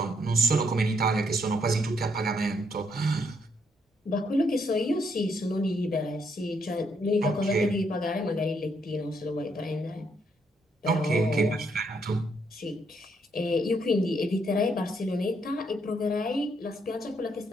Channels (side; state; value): both; normal; correlation 0.73